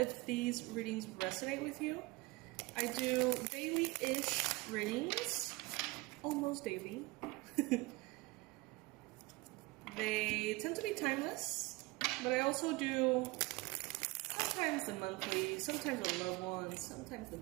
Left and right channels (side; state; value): left; quieter; 23.5 dB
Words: these readings resonate with you. I do daily-ish readings, almost daily. They tend to be timeless, but I also do sometimes the monthly, sometimes the loved ones, sometimes the